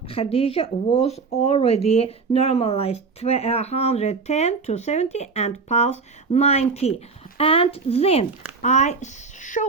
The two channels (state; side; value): quieter; left; 4.7 dB